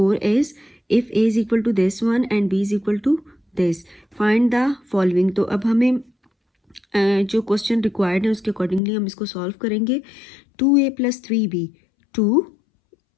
is, if a is equal to this one and b is equal to this, find the following. तो अब हमें जो क्वेश्चन रिक्वायर्ड है उसके अकॉर्डिंगली हम इसको सॉल्व करेंगे। 2a + 3b, 2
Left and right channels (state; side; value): drops out; right; at 8.8 s